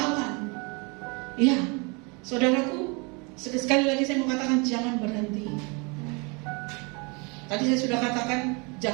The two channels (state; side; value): quieter; left; 30.8 dB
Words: Ya, saudaraku, sekali lagi saya mau katakan jangan berhenti. Tadi saya sudah katakan